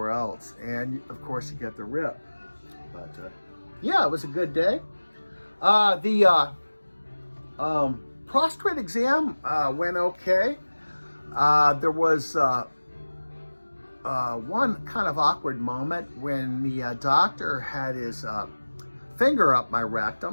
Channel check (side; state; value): both; inverted; correlation -1.00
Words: else, and of course you get the rip. But yeah, it was a good day. The prostate exam went okay. There was one kind of awkward moment when the doctor had his finger up my